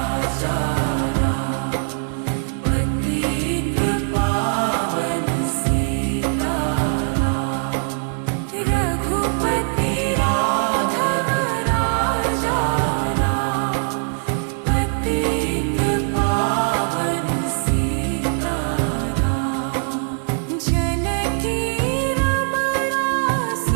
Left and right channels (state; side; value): silent; left; digital silence